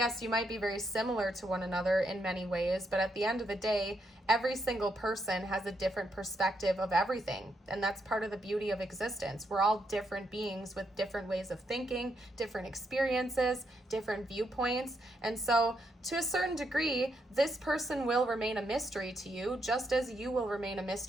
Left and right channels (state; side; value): normal; both; correlation 0.79